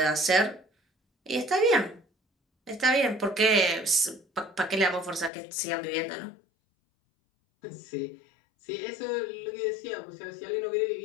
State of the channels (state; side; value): drops out; right; at 5.3 s